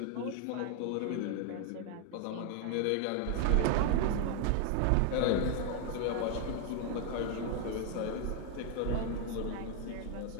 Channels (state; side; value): different; both; correlation 0.00